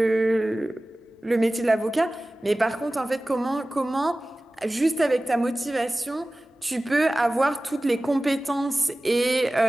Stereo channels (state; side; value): normal; both; correlation 0.97